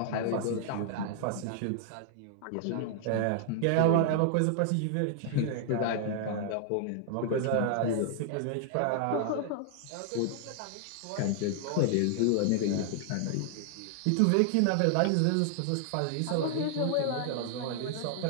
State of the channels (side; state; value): both; different; correlation 0.00